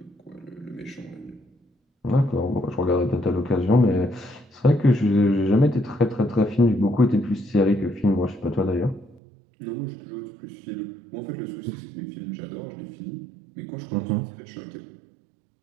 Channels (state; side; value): drops out; left; at 9.2 s